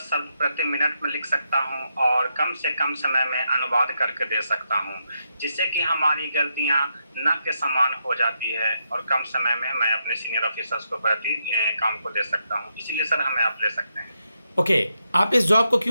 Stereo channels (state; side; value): inverted; both; correlation -0.82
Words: शब्द प्रति मिनट में लिख सकता हूं और कम से कम समय में अनुवाद करके दे सकता हूं, जिससे कि हमारी गलतियां न के समान हो जाती है और कम समय में मैं अपने सीनियर ऑफिसर्स को प्रति काम को दे सकता हूं। इसीलिए सर हमें आप ले सकते हैं। ओके, आप इस जॉब को